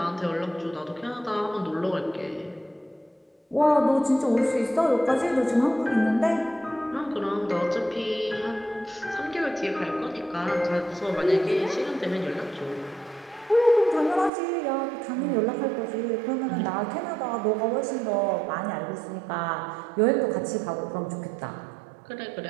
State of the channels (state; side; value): drops out; left; at 14.3 s